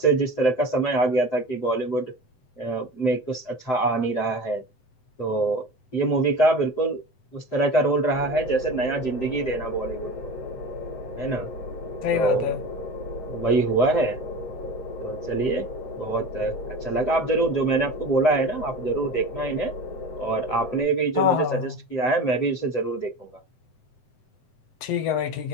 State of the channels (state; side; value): late; right; 7.9 ms